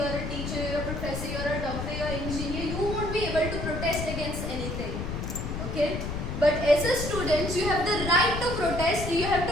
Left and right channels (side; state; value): left; noise; rumble, 4 dB below the sound